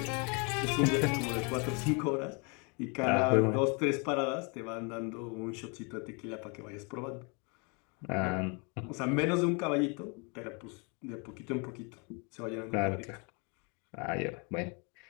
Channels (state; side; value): quieter; right; 33.2 dB